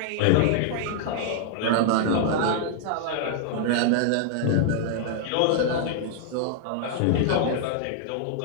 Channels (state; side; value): different; both; correlation -0.01